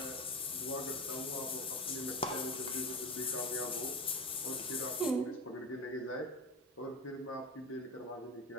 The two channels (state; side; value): normal; both; correlation 0.25